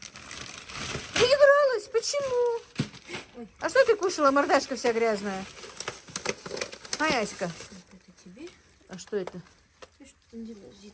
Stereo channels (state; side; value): identical; both; correlation 1.00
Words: Не игралась? Почему? Ой. А что ты кушала? Мордашка вся грязная. Аська. Это тебе? А что это? Ты что там делаешь? Где